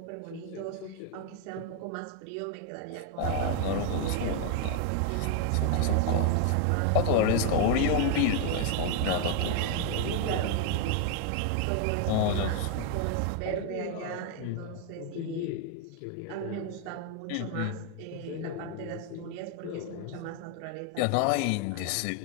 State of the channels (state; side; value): different; both; correlation 0.00